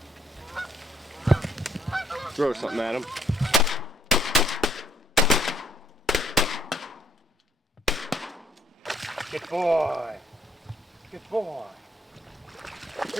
Throw something at him. Good boy. Good boy.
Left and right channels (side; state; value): both; normal; correlation 0.66